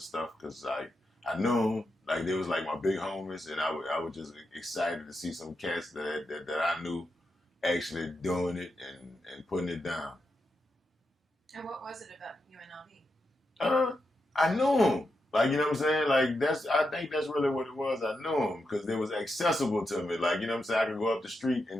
stuff, because I knew them, like, they was like my big homies, and I was just excited to see some cats that I knew actually doing it and putting it down. And what was it about UNLV? I knew them. Like, you know what I'm saying? Like, I think that's really what it was. I knew them because they was accessible to me. Like, you know what I'm saying? I could go up the street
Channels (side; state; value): both; normal; correlation 0.86